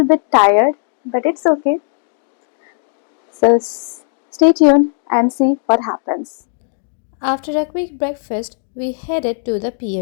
bit tired, but it's okay. So stay tuned and see what happens. After a quick breakfast, we headed to the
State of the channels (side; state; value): right; silent; digital silence